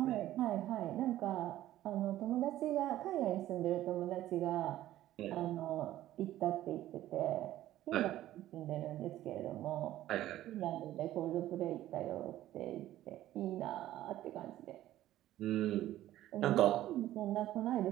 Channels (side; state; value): left; quieter; 13.9 dB